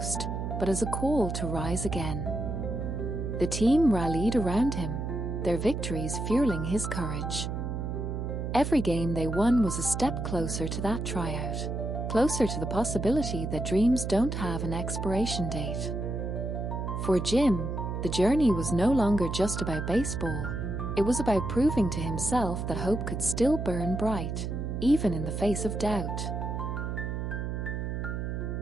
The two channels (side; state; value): right; noise; hum, 3 dB below the sound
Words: but as a call to rise again. The team rallied around him, their victories fueling his courage. Every game they won was a step closer to that tryout, closer to the possibility that dreams don't have an expiration date. For Jim, the journey was no longer just about baseball. It was about proving to himself that hope could still burn bright, even in the face of doubt.